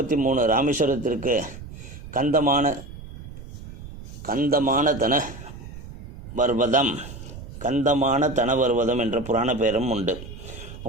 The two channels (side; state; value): right; noise; rumble, 14 dB below the sound